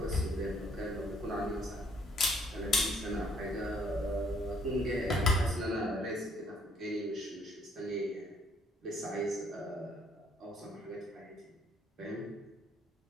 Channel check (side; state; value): both; normal; correlation 0.65